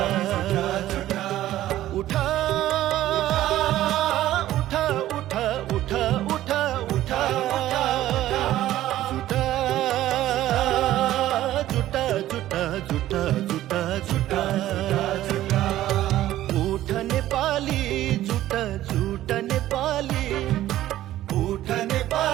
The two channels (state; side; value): quieter; left; 14.0 dB